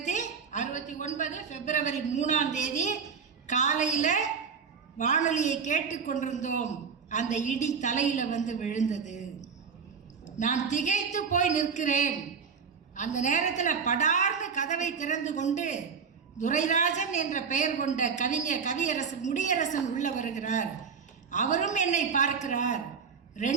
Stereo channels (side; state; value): left; quieter; 6.1 dB